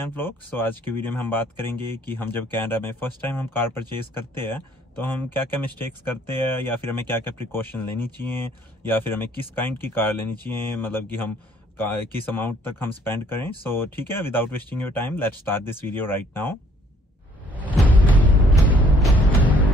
Vlog. So आज की video में हम बात करेंगे कि हम जब कनाडा में फर्स्ट टाइम हम कार परचेज करते हैं तो हम क्या क्या मिस्टेक्स करते हैं या फिर हमें क्या क्या प्रिकॉशन लेनी चाहिए या फिर हमें किस काइंड की कार लेनी चाहिए, मतलब कि हम किस अमाउंट तक हम स्पेंड करें। सो ठीक है, without wasting your time let's start this video right now.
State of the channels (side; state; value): both; normal; correlation 0.61